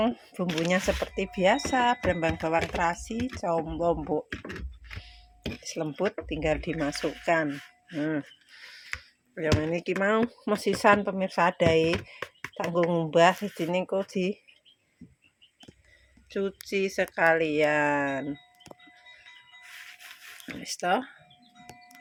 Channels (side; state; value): both; identical; correlation 1.00